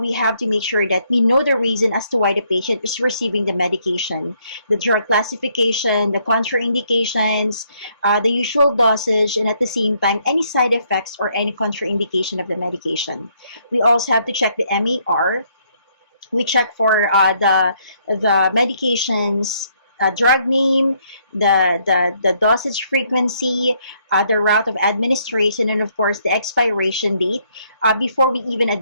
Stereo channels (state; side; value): inverted; both; correlation -0.70